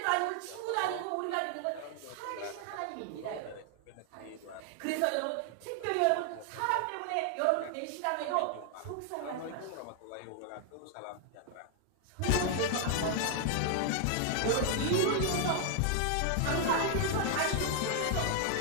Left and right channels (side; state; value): both; different; correlation 0.00